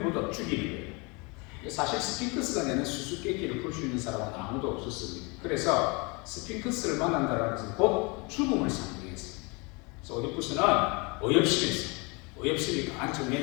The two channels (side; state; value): right; quieter; 29.2 dB